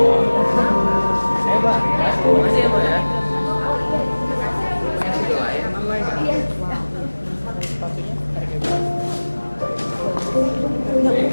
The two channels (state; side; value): inverted; both; correlation -1.00